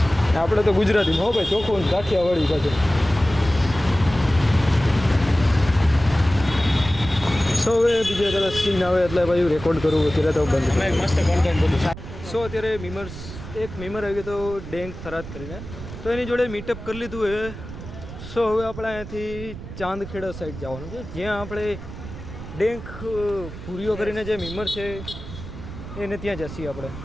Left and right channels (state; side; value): noise; right; rumble, 12 dB below the sound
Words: આપણે તો ગુજરાતીમાં હો ભાઈ, ચોખ્ખું કાઠિયાવાડી પાછું. સો હવે બીજા કદાચ સીન આવે એટલે ભાઈ રેકોર્ડ કરવું, અત્યારે તો બંધ. અમે મસ્ત કોન્ટેન્ટ બધું. સો અત્યારે એક મીમર આવી ગયો તો ડેંગ થરાદ કરીને, તો એની જોડે મીટઅપ કરી લીધું એ. સો હવે આપણે અહીંયાથી ચાંદખેડા સાઈડ જવાનું છે, જ્યાં આપણે ડેંક પૂરીઓ કરીને જે મીમર છે એને ત્યાં જઈએ આપણે.